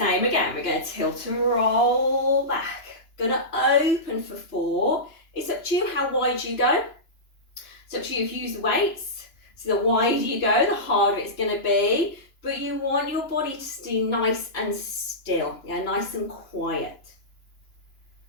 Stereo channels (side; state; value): right; late; 2.9 ms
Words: again, we're going to tilt and roll back. Going to open for 4. It's up to you how wide you go. It's up to you if you use the weights. So the wider you go, the harder it's going to be. But you want your body to stay nice and still, yeah, nice and quiet.